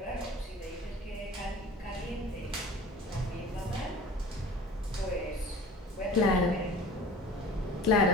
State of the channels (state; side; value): normal; both; correlation 0.43